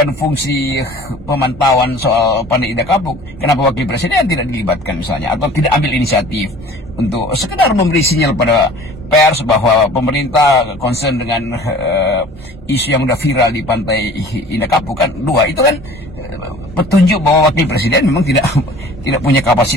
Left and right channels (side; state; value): both; normal; correlation 0.47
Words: fungsi pemantauan soal Pandai Indah Kapuk. Kenapa wakil presiden tidak dilibatkan misalnya, atau tidak ambil inisiatif untuk sekedar memberi sinyal pada pers bahwa pemerintah concern dengan isu yang sudah viral di Pantai Indah Kapuk? Kan dua itu kan petunjuk bahwa wakil presiden memang tidak punya